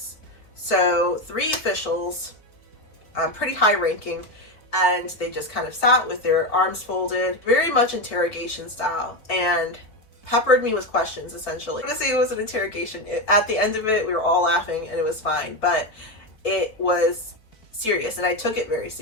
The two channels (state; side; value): late; right; 4.7 ms